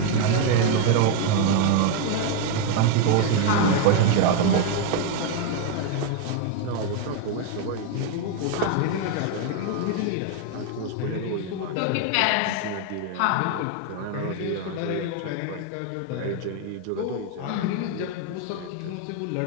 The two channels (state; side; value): different; both; correlation 0.01